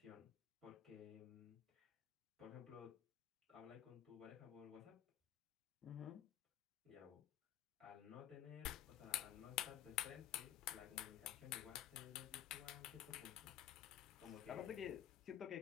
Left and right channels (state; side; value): quieter; right; 11.5 dB